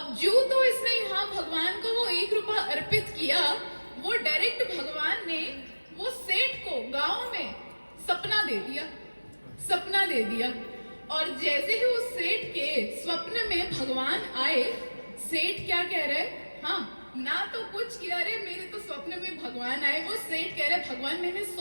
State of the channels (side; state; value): both; inverted; correlation -1.00